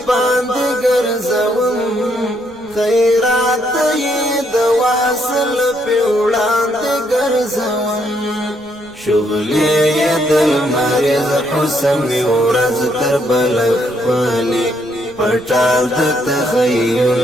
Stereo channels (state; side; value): noise; right; rumble, 26 dB below the sound